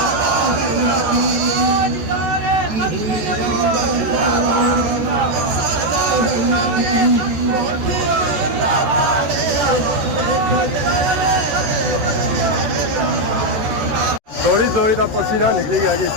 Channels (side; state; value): left; late; 13 ms